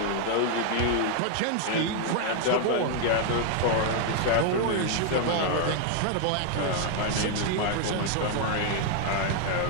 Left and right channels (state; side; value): different; both; correlation 0.00